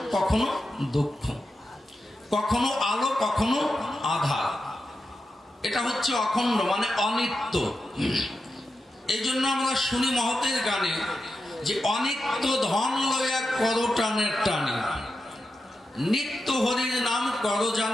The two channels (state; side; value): normal; both; correlation 0.89